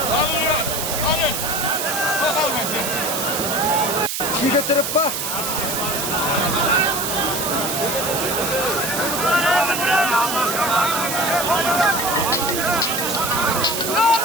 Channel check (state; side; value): noise; right; hiss, 2 dB below the sound